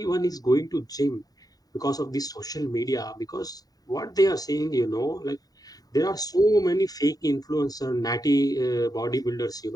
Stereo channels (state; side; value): late; right; 0.18 ms